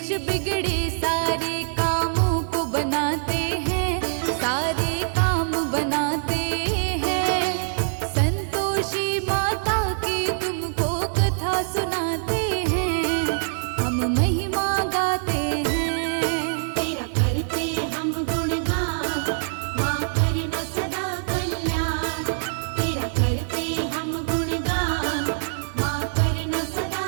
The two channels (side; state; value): left; silent; digital silence